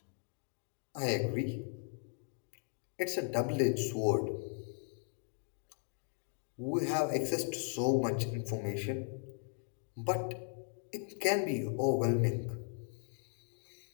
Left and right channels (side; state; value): right; silent; 53 dB below the other